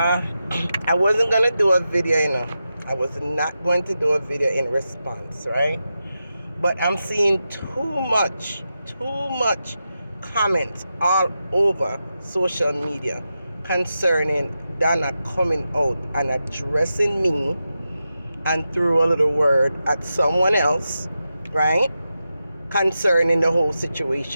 wasn't going to do a video, I was not going to do a video in response, right? But I'm seeing too much comments all over social media concerning Donna coming out and addressing me and threw a little word at someone else, right? Concerning the whole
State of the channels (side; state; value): both; inverted; correlation -0.89